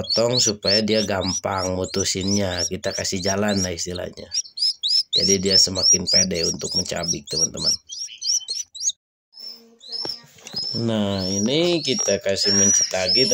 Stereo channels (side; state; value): both; identical; correlation 1.00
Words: supaya dia gampang mutusinnya, kita kasih jalan lah istilahnya. Jadi dia semakin pede untuk mencabik teman-teman. Nah ini kita kasih mencit lagi